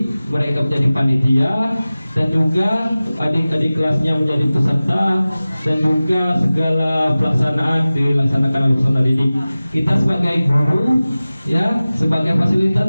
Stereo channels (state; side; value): inverted; both; correlation -0.97